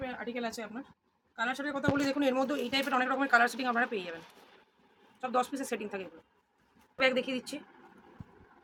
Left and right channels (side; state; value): both; identical; correlation 1.00